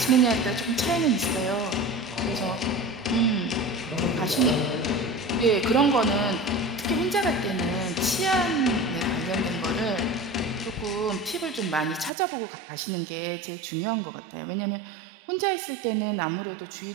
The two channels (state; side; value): drops out; left; at 12.1 s